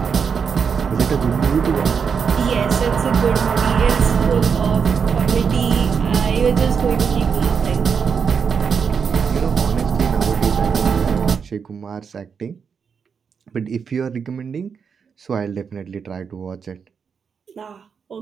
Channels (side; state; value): left; quieter; 6.3 dB